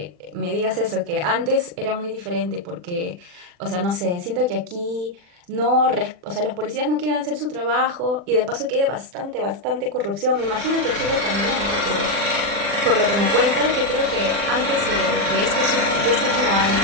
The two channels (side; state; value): left; late; 40 ms